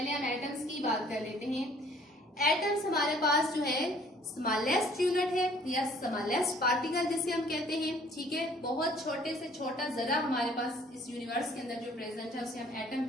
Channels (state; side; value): normal; both; correlation 0.57